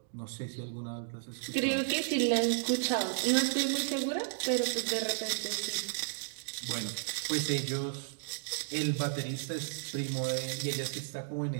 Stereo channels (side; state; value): left; silent; digital silence